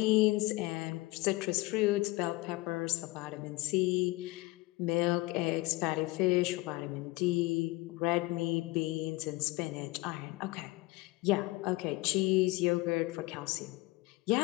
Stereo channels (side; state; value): right; quieter; 21.7 dB